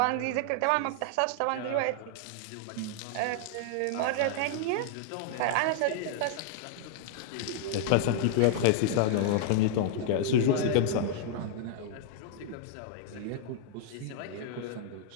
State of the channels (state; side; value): different; both; correlation -0.01